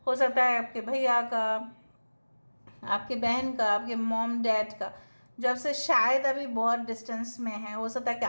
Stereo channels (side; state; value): both; inverted; correlation -1.00